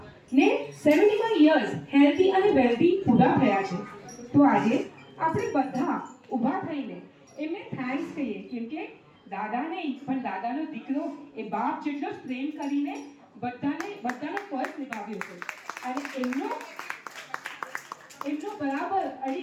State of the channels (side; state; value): both; identical; correlation 1.00